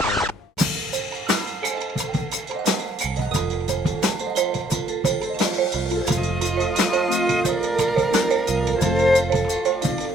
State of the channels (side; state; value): both; normal; correlation 0.67